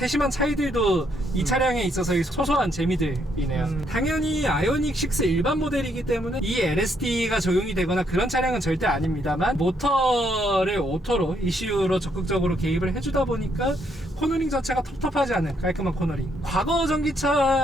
차이들도 이 차량에 있어서의 소소한 재미들이네요. 당연히 아이오닉 6 일반 모델이기 때문에 이 LSD가 적용이 되거나 그런 차량은 절대 아닙니다만 모터를 오토로 ECU로 적극적으로 개입을 해주다 보니까 코너링 자체가 텁텁하지 않은 깔끔한 코너링. 과거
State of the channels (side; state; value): both; normal; correlation 0.72